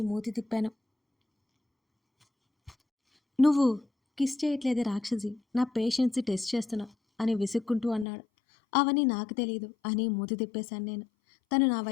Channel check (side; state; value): right; drops out; at 8.1 s